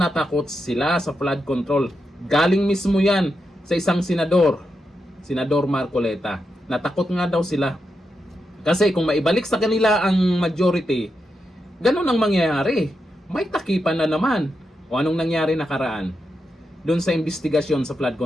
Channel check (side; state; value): both; normal; correlation 0.86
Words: takot sila sa flood control. Galing mismo yan sa isang senador, Senador Marcoleta. Natakot nga daw sila. Kasi kung maibalik sa kanila ang majority, ganun ang mangyayari. May takipan na naman. O anong nangyari nakaraan doon sa investigasyon sa flood